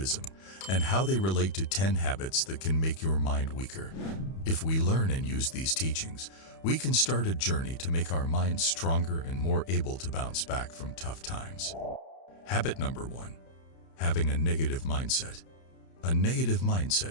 and how they relate to 10 habits that can make your mind weaker. If we learn and use these teachings, we can start a journey to make our minds stronger and more able to bounce back from tough times. Habit number 1. Having a negative mindset. A negative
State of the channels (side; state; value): right; late; 31 ms